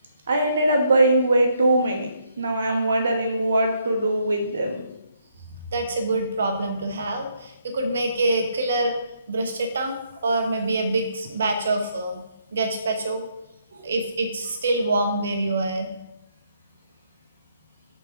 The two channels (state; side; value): inverted; both; correlation -0.73